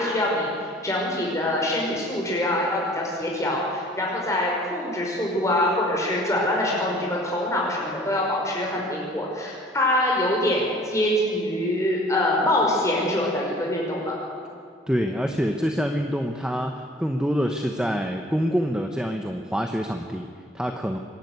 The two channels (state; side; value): normal; both; correlation 0.52